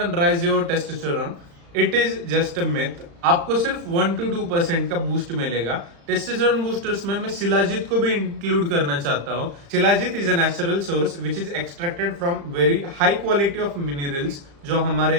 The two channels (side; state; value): left; late; 35 ms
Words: raise your testosterone, it is just a myth. आपको सिर्फ 1 to 2% का बूस्ट मिलेगा। टेस्टोस्टेरोन बूस्टर्स में मैं शिलाजीत को भी इंक्लूड करना चाहता हूँ। Shilajit is a natural source which is extracted from very high quality of minerals, जो हमारे